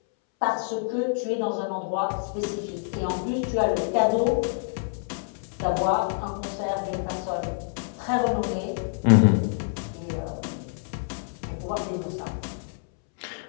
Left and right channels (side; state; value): right; silent; 60 dB below the other